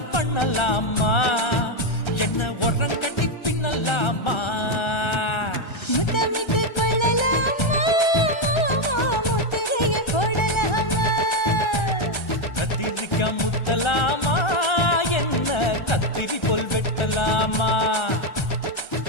பண்ணலாமா என்ன உரம் கட்டி பின்னலாமா முத்தமிட்டு கொள்ளலாமா மாமா முத்திரையை போடலாமா கத்திரிக்கா முத்தலாமா என்ன கத்திரி போல் வெட்டலாமா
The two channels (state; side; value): late; right; 1.3 ms